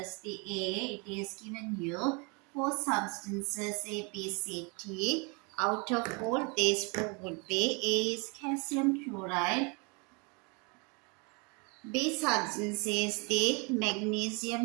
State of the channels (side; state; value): left; quieter; 31.7 dB